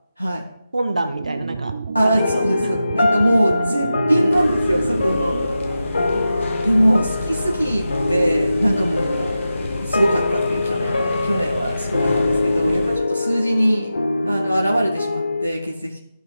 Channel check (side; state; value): both; inverted; correlation -0.92